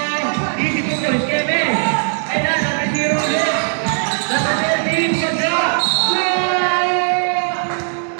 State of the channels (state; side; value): silent; left; 63 dB below the other